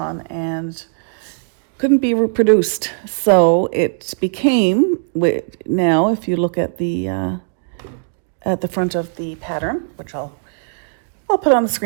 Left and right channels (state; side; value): silent; left; digital silence